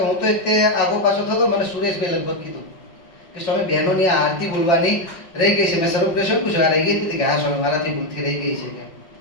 હું તો તે આગો પાછો થતો, મને સુરેશભાઈ લગભગ કીધું કે સ્વામી બહેનોની આરતી બોલવાની રહી ગઈ છે. મેં સર્વપ્રશ્ન પૂછ્યો, આ રહી ગઈ હતી કે હા સ્વામી મારાથી ભૂલથી રહી ગઈ છે.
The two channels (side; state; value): right; late; 5.9 ms